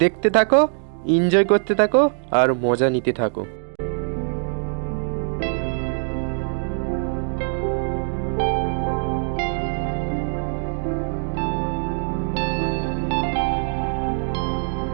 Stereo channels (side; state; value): left; silent; digital silence